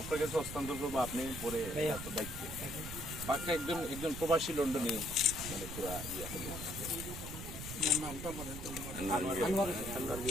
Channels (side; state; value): right; noise; rumble, 8 dB below the sound